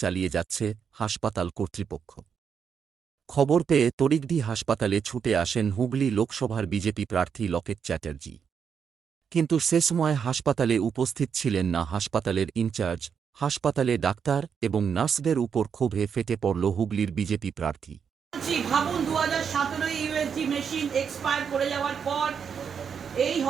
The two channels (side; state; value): left; quieter; 7.0 dB